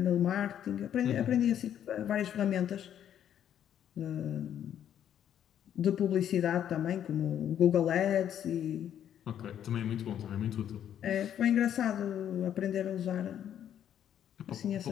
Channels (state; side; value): quieter; right; 10.0 dB